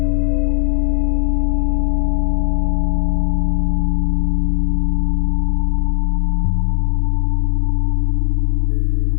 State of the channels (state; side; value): silent; right; digital silence